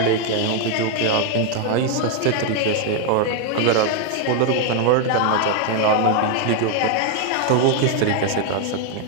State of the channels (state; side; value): different; both; correlation 0.01